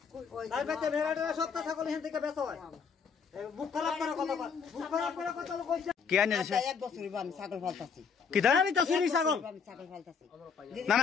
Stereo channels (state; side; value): quieter; right; 6.1 dB